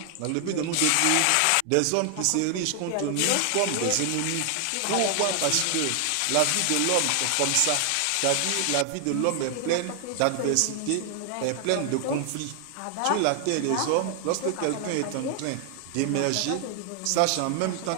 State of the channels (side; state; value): both; different; correlation 0.00